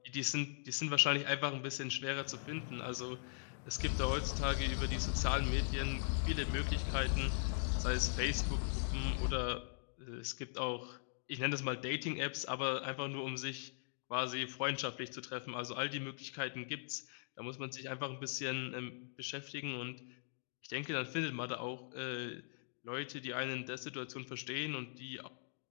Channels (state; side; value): silent; right; digital silence